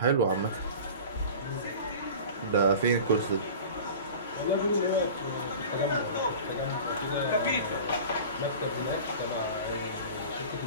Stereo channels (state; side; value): inverted; both; correlation -0.38